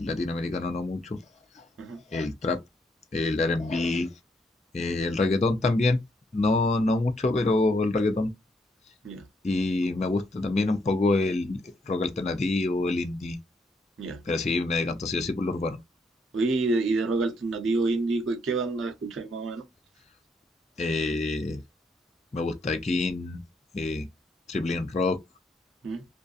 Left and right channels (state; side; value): normal; both; correlation 0.74